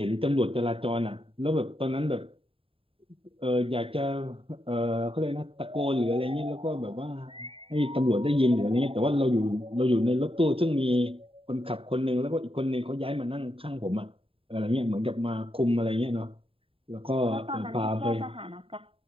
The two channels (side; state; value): left; late; 0.27 ms